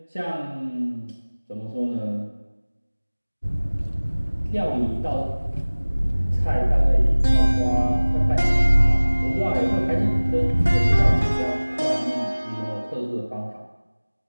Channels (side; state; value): both; inverted; correlation -1.00